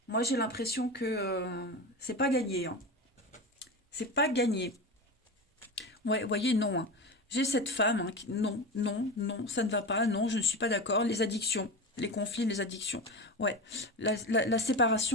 moi j'ai l'impression que c'est pas gagné, hein. C'est pas gagné. Ouais, vous voyez, non, hein. J'ai cette femme, hein, qui, non, non, non, ça ne va pas, non, je ne suis pas d'accord. Les addictions, les conflits, les addictions. Ouais, la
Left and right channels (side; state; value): both; normal; correlation 0.24